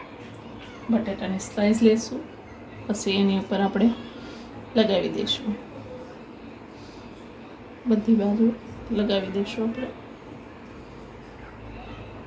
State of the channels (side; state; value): both; identical; correlation 1.00